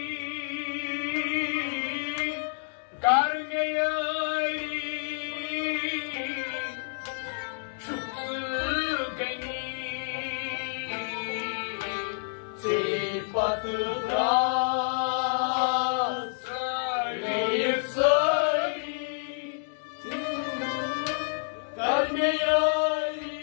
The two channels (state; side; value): silent; right; digital silence